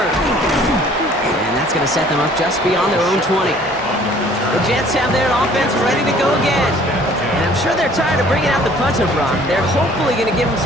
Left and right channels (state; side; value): normal; both; correlation 0.55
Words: And that's going to set them up just beyond their own 20. The Jets have their offense ready to go again. And I'm sure they're tired of bringing out the punter, Brock. They're hopefully going to give them